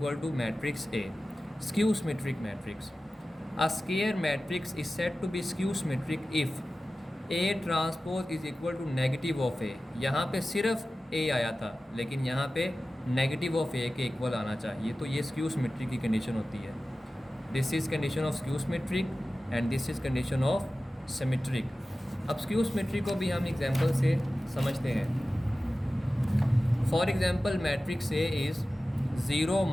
to matrix A। Skew symmetric matrix, a square matrix is said to be skew symmetric if A transpose is equal to negative of A। यहाँ पे सिर्फ A आया था, लेकिन यहाँ पे नेगेटिव ऑफ A के equal आना चाहिए, तो ये स्क्यू सिमेट्रिक की कंडीशन होती है। This is condition of skew symmetric and this is condition of symmetric. अब स्क्यू सिमेट्रिक को भी हम एग्जांपल से समझते हैं। For example matrix A is 0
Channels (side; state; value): both; normal; correlation 0.95